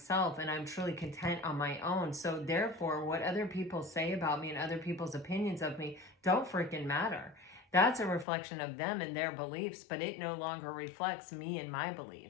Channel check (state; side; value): drops out; right; at 8.2 s